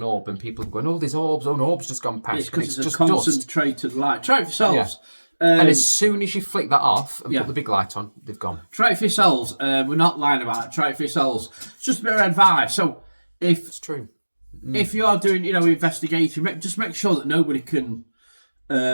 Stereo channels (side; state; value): both; inverted; correlation -1.00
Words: orb, and people are going, oh, there's orbs, an orb's just gone past. It's because it's just a concentrated light. Try it yourselves. Yeah. And as soon as you flick that off and put the big light on, they've gone. Try it for yourselves. We're not lying about it. Try it for yourselves. It's just a bit of advice. So, it's true. If you are doing, investigation, just make sure that nobody can